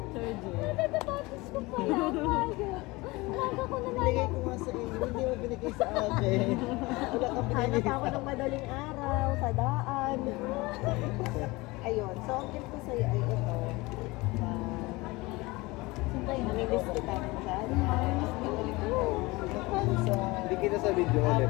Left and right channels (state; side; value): quieter; right; 22.5 dB